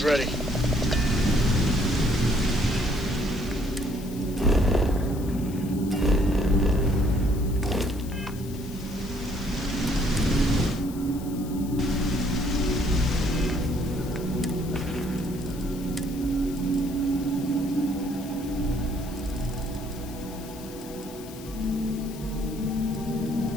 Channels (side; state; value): left; noise; hiss, 18 dB below the sound